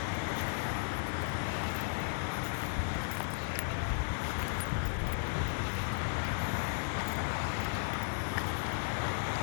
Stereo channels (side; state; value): right; silent; 54 dB below the other